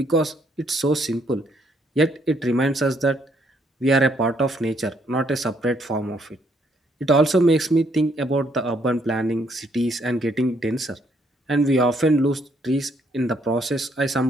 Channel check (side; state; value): both; normal; correlation 0.70